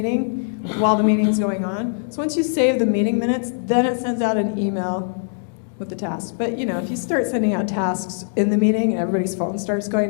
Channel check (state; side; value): silent; right; digital silence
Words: while the meeting's going on. So once you save the meeting minutes, then it sends out an email with the task. But if you start sending out tasks in the meeting and everybody's phone starts